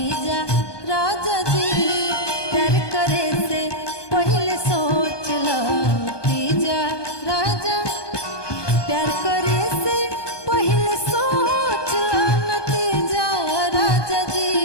राजा जी। प्यार करे से पहले सोच ला नतीजा राजा। प्यार करे से पहले सोच ला नतीजा राजा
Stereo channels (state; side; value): late; right; 1.2 ms